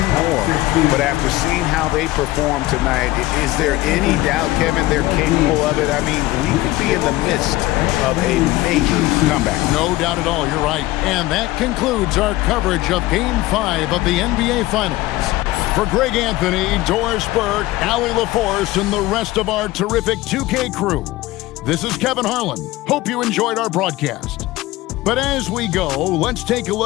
more. But after seeing how they performed tonight, is there any doubt, Kevin, they're capable of it? I mean, we could be in the midst of a major comeback. No doubt at all, you're right. And that concludes our coverage of Game 5 of the NBA Finals. For Greg Anthony, Doris Burke, Allie LaForce, and the rest of our terrific 2K crew, this is Kevin Harlan. Hope you enjoyed our broadcast. But as we go, let's take a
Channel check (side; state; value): right; quieter; 17.8 dB